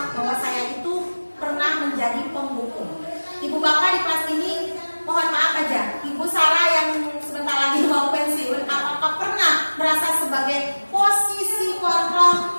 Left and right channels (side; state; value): both; inverted; correlation -1.00